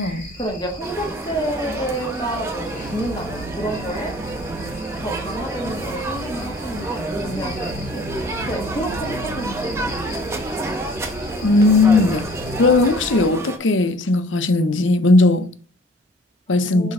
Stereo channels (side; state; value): both; normal; correlation 0.52